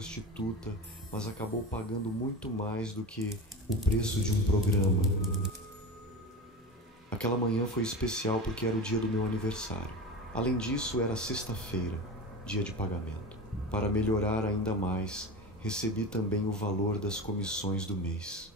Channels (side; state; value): both; normal; correlation 0.27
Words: mas acabou pagando muito mais do que o preço de um programa. Aquela manhã foi especial porque era o dia do meu aniversário. Além disso, era sexta-feira, dia de pagamento. Para melhorar ainda mais, recebi também o valor das comissões do mês.